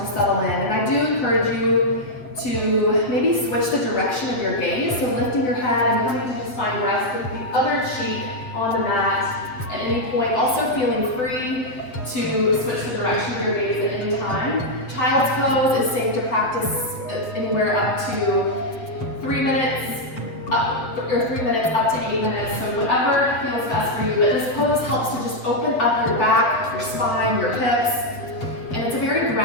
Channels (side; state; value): right; late; 7.8 ms